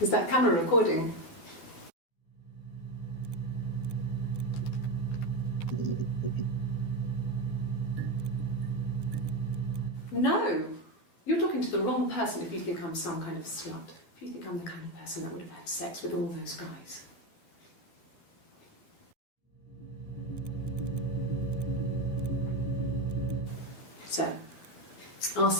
that camera recording? No! You're talking to the wrong person if you think I'm some kind of slut. If you think I'm the kind of person that would have had sex with all those guys. So, our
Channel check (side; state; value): right; late; 12 ms